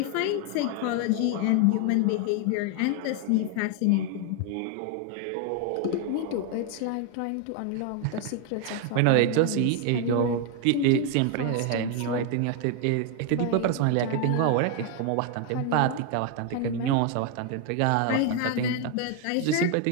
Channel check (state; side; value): different; both; correlation 0.01